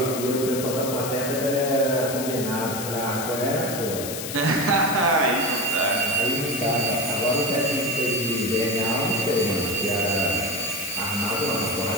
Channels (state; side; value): noise; left; hiss, 7 dB below the sound